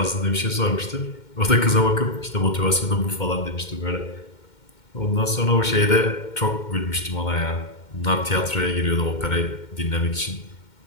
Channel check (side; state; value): right; late; 2.1 ms